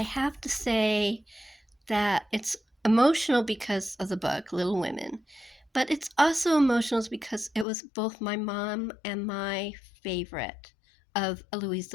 have to say that it's emotional because of the book, Little Women. But it's also emotional because it was both my mom and my favorite of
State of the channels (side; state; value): right; drops out; at 7.7 s